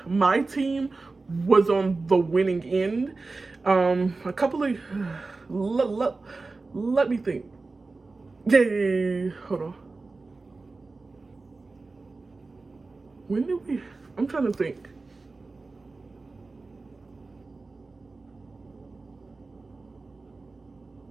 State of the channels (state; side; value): quieter; left; 3.7 dB